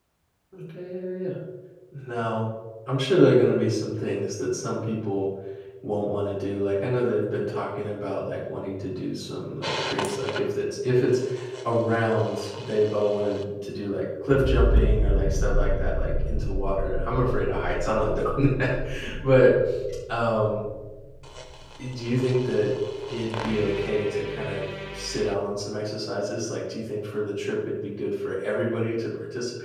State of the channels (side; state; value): both; identical; correlation 1.00